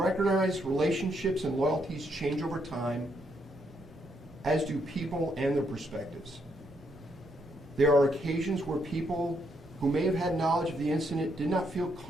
relationships and loyalties change over time, as do people and their perspectives. There are occasions where people who may have had knowledge of the incident did not feel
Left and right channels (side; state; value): both; normal; correlation 0.76